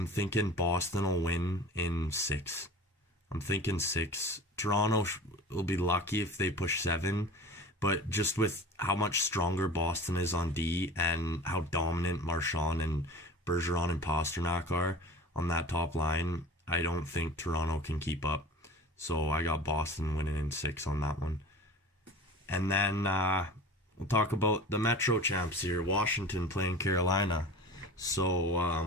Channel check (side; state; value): both; normal; correlation 0.38